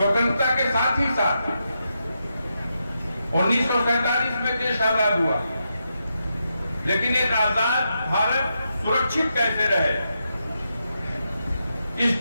के साथ ही साथ 1947 में देश आजाद हुआ, लेकिन एक आजाद भारत सुरक्षित कैसे रहे। इस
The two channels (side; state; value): both; inverted; correlation -0.84